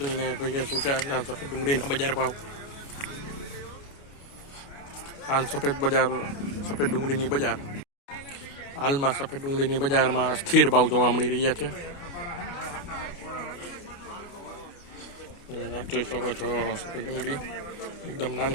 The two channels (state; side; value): late; right; 29 ms